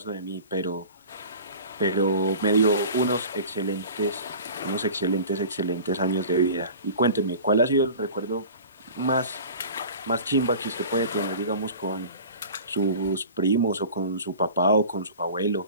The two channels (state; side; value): inverted; both; correlation -0.40